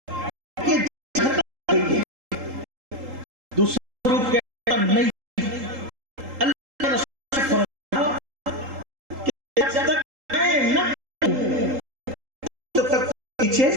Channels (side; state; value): left; late; 3.8 ms